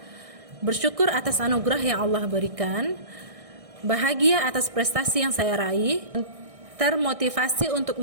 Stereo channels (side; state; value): left; late; 1.6 ms